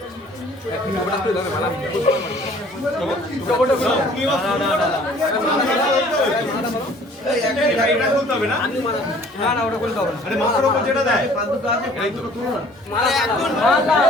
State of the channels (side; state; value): both; normal; correlation 0.54